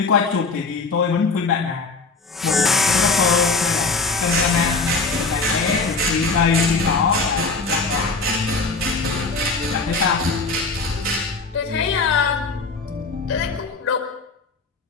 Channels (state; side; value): quieter; right; 4.1 dB